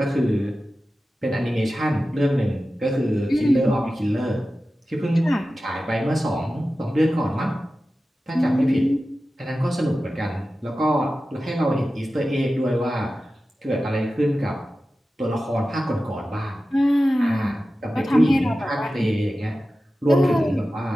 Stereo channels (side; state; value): both; normal; correlation 0.94